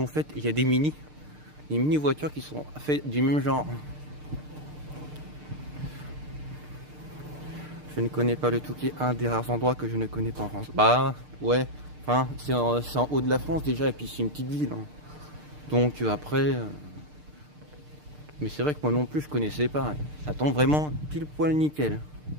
faite. Il y a des mini voitures qui sont faites du même genre. Je ne connais pas le Touquet, un des rares endroits que je ne connais pas en France. Bah ouais, enfin, c'est en haut de la France déjà, et puis c'est une petite ville. Hein. Donc après, mais c'est vrai que moi non plus je connaissais pas. Hein. Ça tombe vraiment pile poil nickel.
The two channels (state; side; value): late; left; 6.6 ms